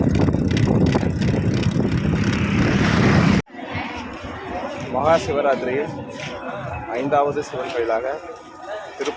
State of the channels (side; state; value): both; identical; correlation 1.00